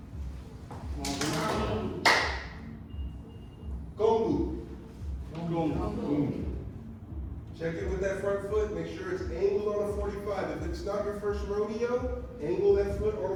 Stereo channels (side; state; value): both; identical; correlation 1.00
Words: Gongbu. Check in with that front foot. Make sure it's angled on a 45. If it's not your first rodeo, angle that foot on